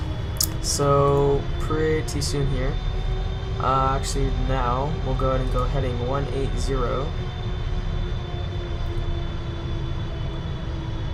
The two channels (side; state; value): both; identical; correlation 1.00